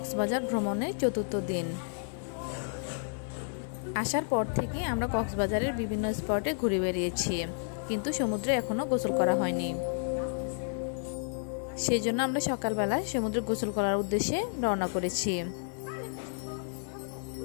ভ্রমণের চতুর্থ দিন। আসার পর থেকে আমরা কক্সবাজারের বিভিন্ন স্পটে ঘুরে বেরিয়েছি, কিন্তু সমুদ্রে এখনও গোসল করা হয়নি। সেই জন্য আমরা সকালবেলা সমুদ্রে গোসল করার উদ্দেশ্যে রওনা করেছি।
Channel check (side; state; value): right; silent; 57 dB below the other